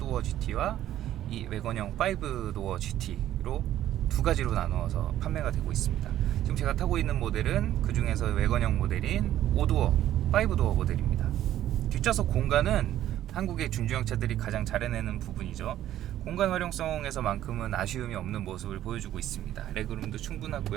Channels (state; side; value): quieter; left; 12.5 dB